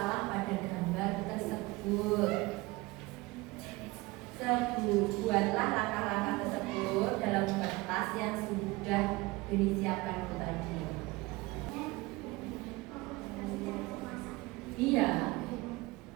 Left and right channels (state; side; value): quieter; left; 22.0 dB